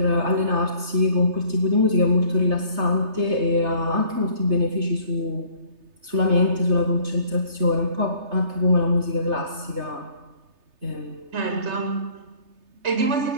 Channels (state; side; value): late; left; 3.3 ms